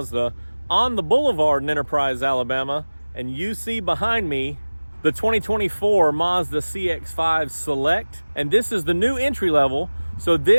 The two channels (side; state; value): both; inverted; correlation -1.00